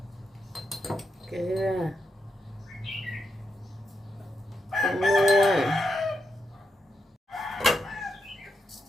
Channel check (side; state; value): both; normal; correlation 0.84